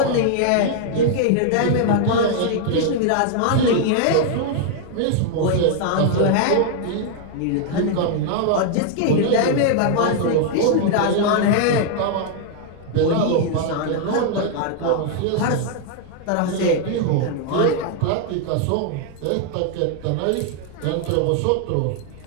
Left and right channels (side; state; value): both; different; correlation 0.00